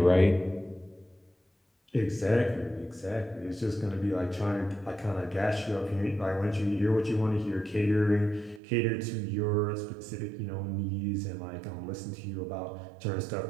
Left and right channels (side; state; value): left; drops out; at 8.6 s